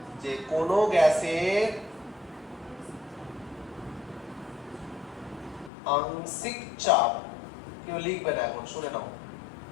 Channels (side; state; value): right; drops out; at 5.7 s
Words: যে কোন গ্যাসের আংশিক চাপ কেউ লিখবে না এখন শুনে নাও